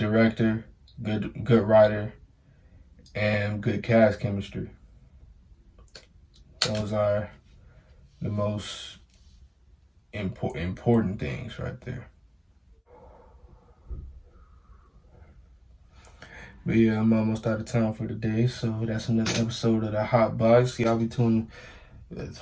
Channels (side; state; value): both; identical; correlation 1.00